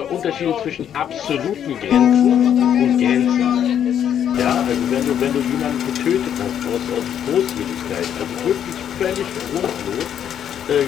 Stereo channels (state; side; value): quieter; right; 9.4 dB